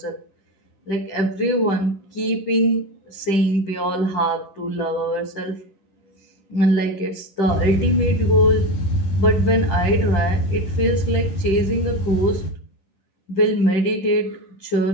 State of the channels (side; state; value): right; late; 10 ms